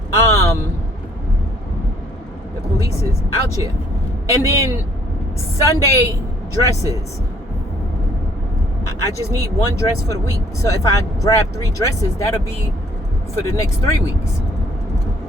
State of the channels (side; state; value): both; normal; correlation 0.62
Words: The police is out here. And then Sunday dresses, I just need one dress for the week. So if I grab 3 dresses, that'll be for the next 3 weeks.